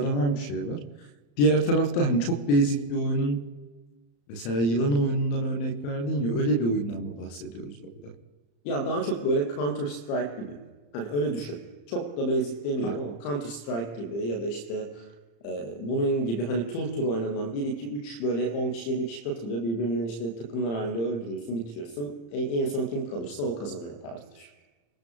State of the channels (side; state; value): right; late; 35 ms